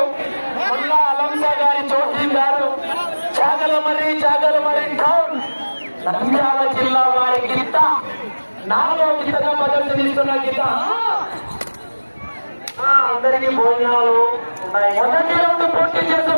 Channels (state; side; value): inverted; both; correlation -1.00